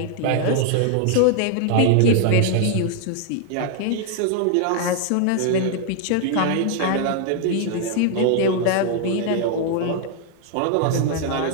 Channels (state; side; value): different; both; correlation 0.00